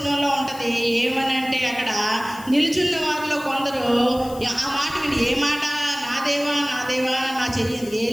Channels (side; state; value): left; noise; hiss, 18 dB below the sound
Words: ఉంటుంది. ఏమని అంటే అక్కడ నిలుచున్న వారిలో కొందరు ఆ మాట విని, ఏ మాట? నా దేవా నా దేవా నా చెయ్యింది